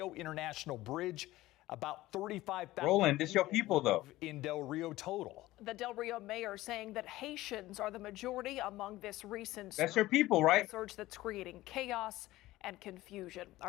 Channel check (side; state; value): right; quieter; 17.1 dB